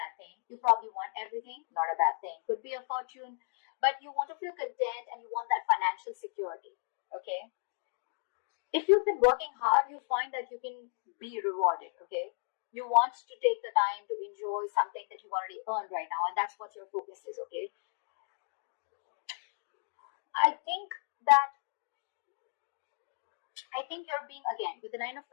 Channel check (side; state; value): right; silent; 55 dB below the other